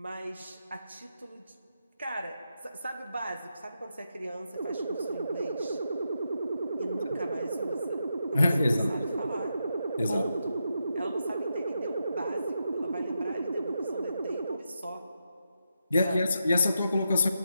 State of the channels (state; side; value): inverted; both; correlation -0.85